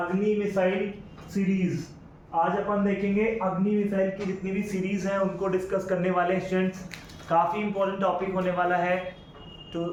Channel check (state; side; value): identical; both; correlation 1.00